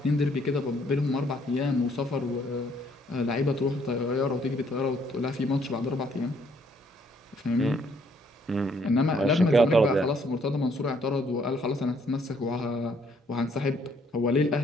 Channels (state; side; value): normal; both; correlation 0.66